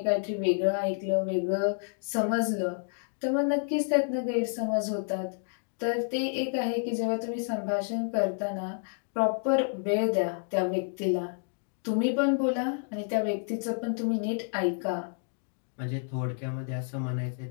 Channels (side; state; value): right; silent; digital silence